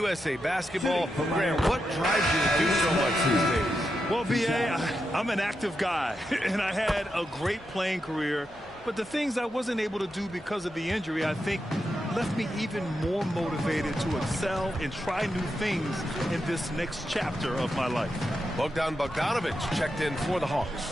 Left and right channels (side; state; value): both; normal; correlation 0.86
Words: Basketball, Grant, what drives you to do so much these days? Well, B.A., I'm an active guy, and I had a great playing career. But the things I wasn't able to do because of the injury, I think, left me even more motivated to excel and try new things in this next chapter of my life. Bogdan Bogdanovich checked in for the